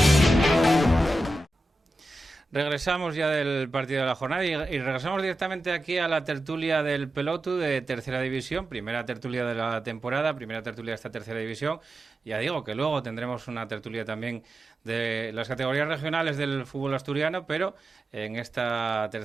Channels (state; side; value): normal; both; correlation 0.91